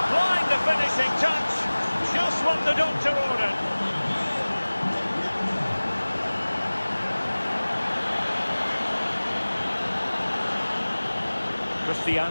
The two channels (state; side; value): inverted; both; correlation -1.00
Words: the finishing touch, just what the doctor ordered.